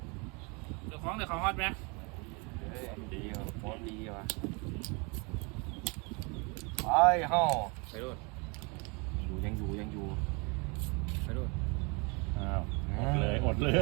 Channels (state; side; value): quieter; left; 30.6 dB